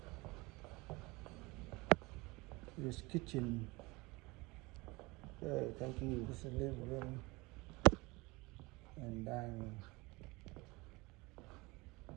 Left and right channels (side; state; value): left; quieter; 23.8 dB